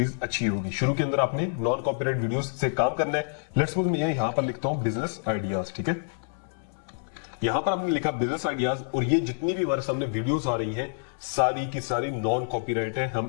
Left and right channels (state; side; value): silent; right; 60 dB below the other